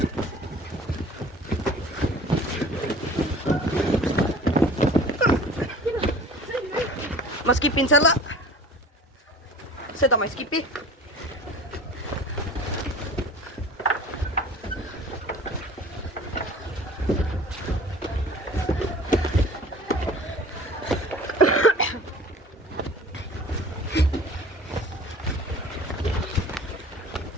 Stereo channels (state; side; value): normal; both; correlation 0.44